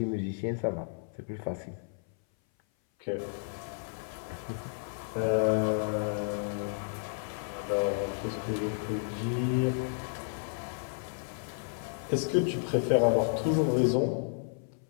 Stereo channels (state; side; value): silent; right; 56 dB below the other